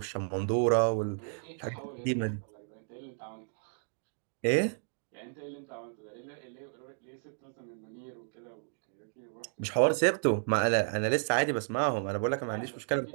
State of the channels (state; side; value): silent; left; digital silence